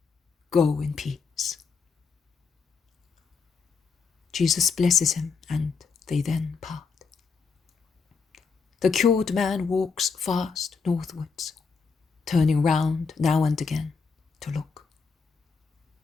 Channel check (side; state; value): right; quieter; 5.2 dB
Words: Go in peace. Jesus blesses him, and they then part. The cured man walks fast northwards, turning round now and again to look.